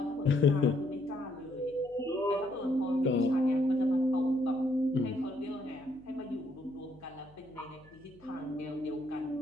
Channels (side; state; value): left; noise; hum, 26 dB below the sound